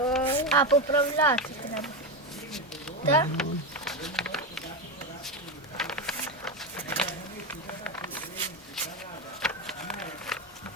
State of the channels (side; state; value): both; normal; correlation 0.14